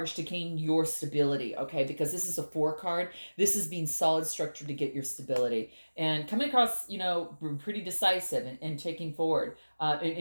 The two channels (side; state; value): both; inverted; correlation -1.00